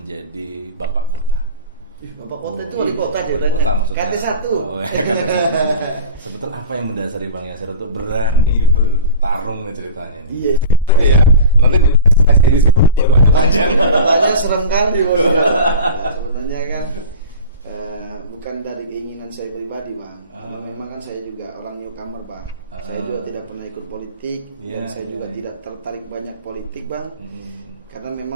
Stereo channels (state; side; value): inverted; both; correlation -0.36